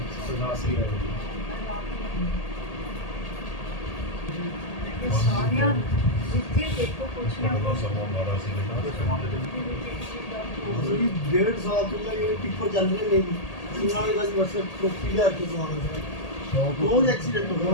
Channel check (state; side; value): late; right; 1.8 ms